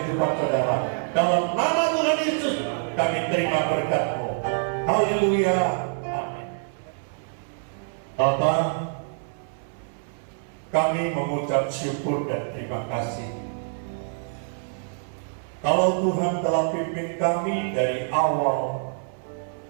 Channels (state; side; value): silent; left; 61 dB below the other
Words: saudara. Dalam nama Tuhan Yesus kami terima berkat-Mu. Haleluya. Amin. Bapa, kami mengucap syukur dan terima kasih. Kalau Tuhan telah pimpin kami dari awal,